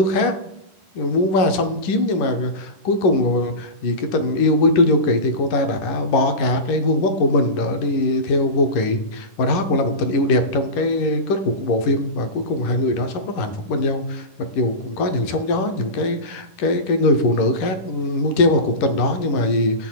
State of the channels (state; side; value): late; right; 10 ms